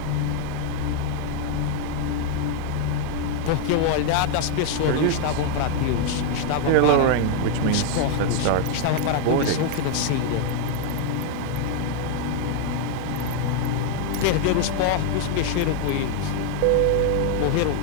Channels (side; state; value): both; different; correlation 0.00